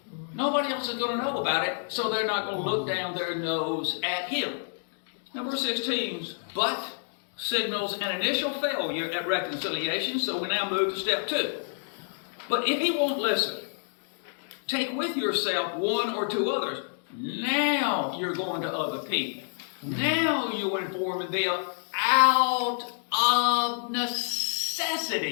Nobody else is going to know about it, so they're not going to look down their nose at him. Now, verse 16, but signals an initial failure at reconciliation, so we now move to step 2. But if he won't listen, take with yourself one or two others. Now you're going to other people. Now you're informing them out of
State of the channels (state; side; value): silent; right; digital silence